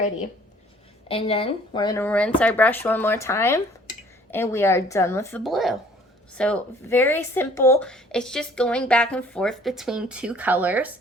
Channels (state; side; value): normal; both; correlation 0.56